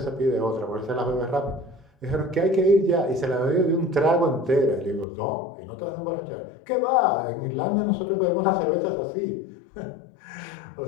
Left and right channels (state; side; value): drops out; right; at 5.1 s